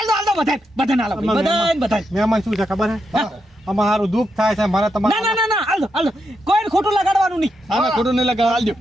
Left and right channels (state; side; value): normal; both; correlation 0.83